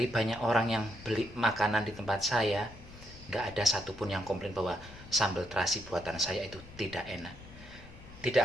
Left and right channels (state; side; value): noise; left; rumble, 18 dB below the sound